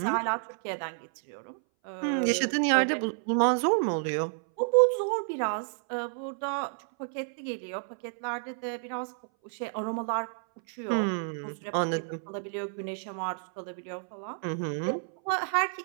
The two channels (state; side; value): silent; left; 58 dB below the other